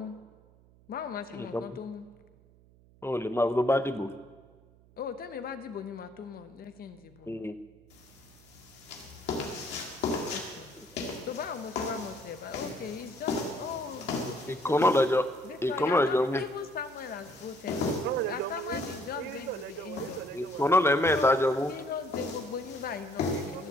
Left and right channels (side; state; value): right; noise; hum, 27 dB below the sound